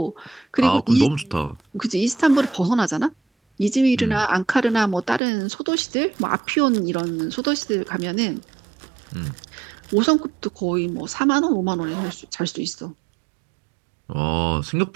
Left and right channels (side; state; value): left; drops out; at 5.2 s